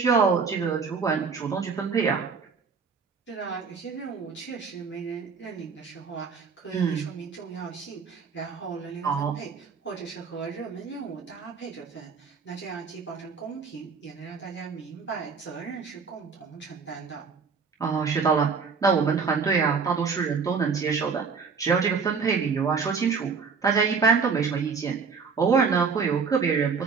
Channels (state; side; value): quieter; left; 5.4 dB